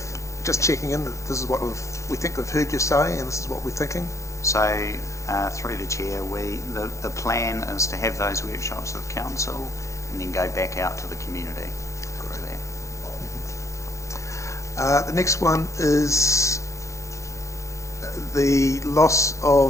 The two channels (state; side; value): late; right; 0.15 ms